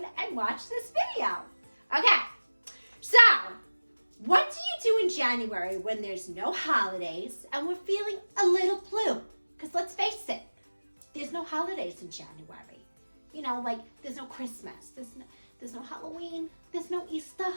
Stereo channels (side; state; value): both; inverted; correlation -1.00